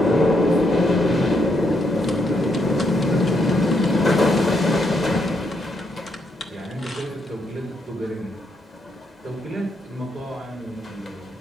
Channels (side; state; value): both; normal; correlation 0.77